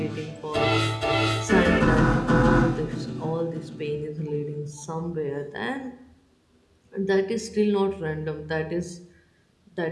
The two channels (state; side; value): identical; both; correlation 1.00